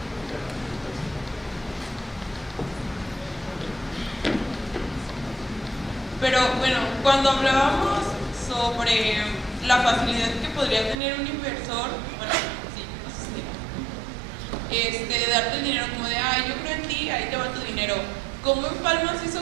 Pero bueno, cuando hablábamos sobre la facilidad que podría tener un inversor, bueno, sí, no sé si de darte el dinero como de, ay, yo creo en ti, ahí te va tu dinero. ¿Cómo empalmas eso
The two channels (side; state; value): left; drops out; at 11.0 s